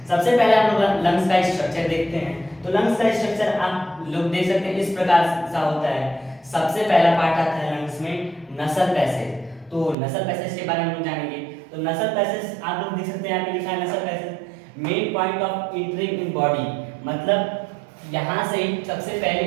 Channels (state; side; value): drops out; left; at 10.0 s